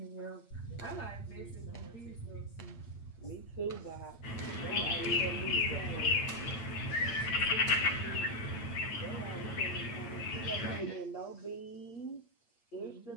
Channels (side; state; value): right; late; 8.6 ms